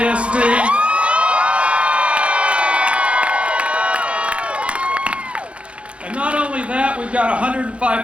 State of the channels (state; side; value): late; left; 0.061 ms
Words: And not only that, we've got